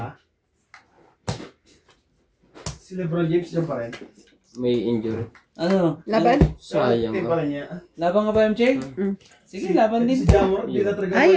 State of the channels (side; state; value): both; identical; correlation 1.00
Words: ba? Si Lebron James dyan pa rin? May injury. Ano? Laban? Sayang Team ka. pa rin niya. Laban ka ba, MJ? Sige, laban din. Si Jamor, di na talaga Ay,